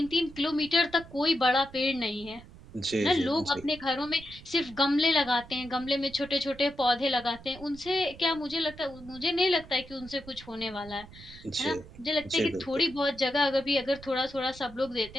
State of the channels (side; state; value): right; noise; rumble, 18 dB below the sound